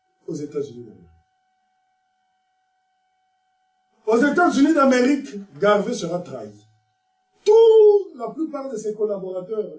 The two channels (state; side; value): identical; both; correlation 1.00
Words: aux États-Unis d'Amérique? Aux États-Unis d'Amérique, Garvey sera trahi. La plupart de ses collaborateurs,